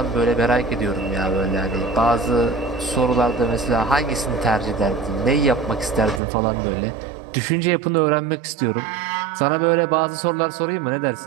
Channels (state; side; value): drops out; left; at 6.2 s